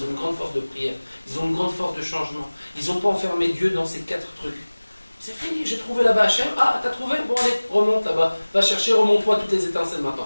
ont une grande force de prière, ils ont une grande force de changement. Ils n'ont pas enfermé Dieu dans ces 4 trucs. C'est fini, j'ai trouvé là-bas Hachem. Ah, t'as trouvé? Bon, allez, remonte là-bas. Va chercher, remonte-toi toutes les étincelles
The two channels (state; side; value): inverted; both; correlation -1.00